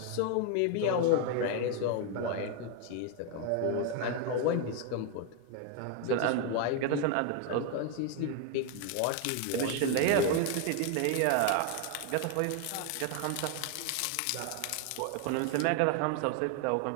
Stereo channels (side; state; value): both; different; correlation 0.01